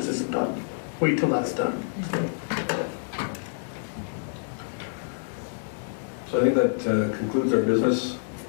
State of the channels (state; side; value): silent; right; digital silence